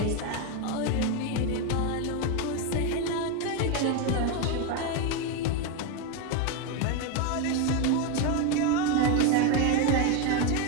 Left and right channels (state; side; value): different; both; correlation 0.03